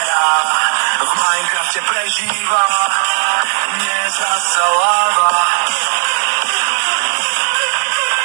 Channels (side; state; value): left; silent; digital silence